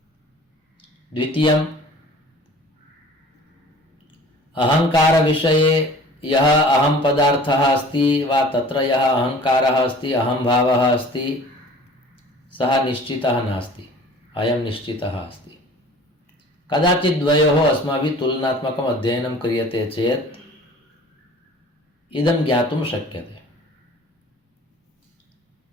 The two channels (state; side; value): normal; both; correlation 0.46